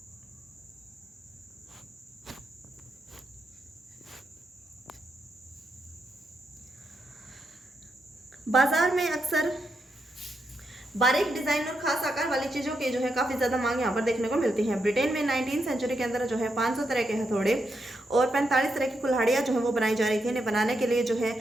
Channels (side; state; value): both; normal; correlation 0.83